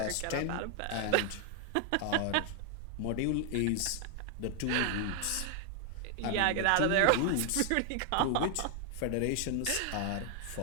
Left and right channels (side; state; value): both; different; correlation 0.00